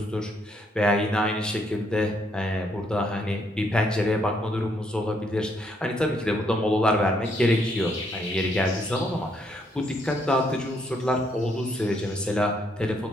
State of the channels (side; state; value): both; normal; correlation 0.72